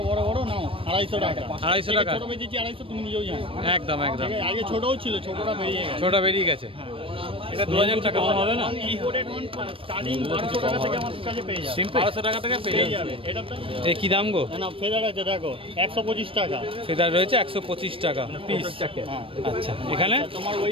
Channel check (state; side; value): late; left; 0.26 ms